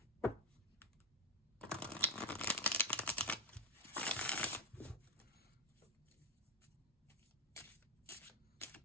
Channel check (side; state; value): both; normal; correlation 0.04